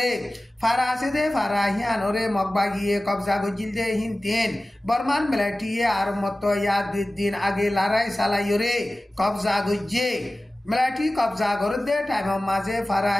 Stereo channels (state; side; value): normal; both; correlation 0.97